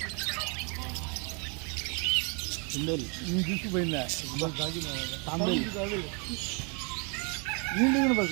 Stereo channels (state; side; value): quieter; left; 35.6 dB